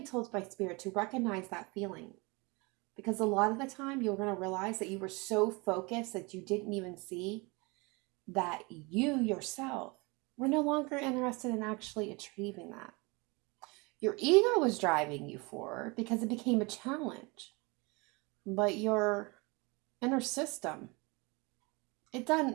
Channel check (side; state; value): left; quieter; 27.5 dB